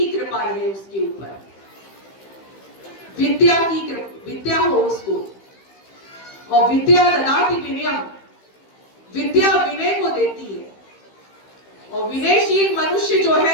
कृपा रहे उसके ऊपर, विद्या हो उसको। और विद्या ददाति विनयम, विद्या विनय को देती है। और विनयशील मनुष्य जो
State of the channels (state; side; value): late; right; 15 ms